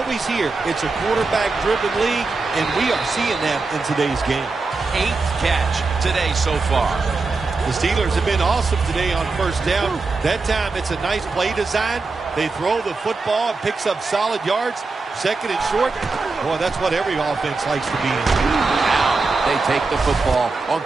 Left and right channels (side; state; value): left; quieter; 4.0 dB